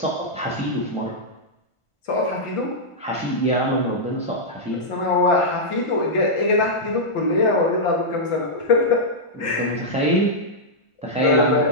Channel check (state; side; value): late; right; 1.5 ms